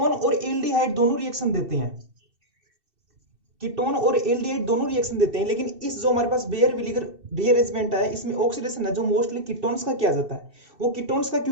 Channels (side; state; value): left; late; 2.7 ms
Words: और एल्डिहाइड दोनों रिएक्शन देते हैं, कीटोन और एल्डिहाइड दोनों रिएक्शन देते हैं। लेकिन इस जो हमारे पास बेयर विलीगर रीअरेंजमेंट है, इसमें ऑक्सीडेशन है जो मोस्टली कीटोन्स का किया जाता है। वो कीटोन्स का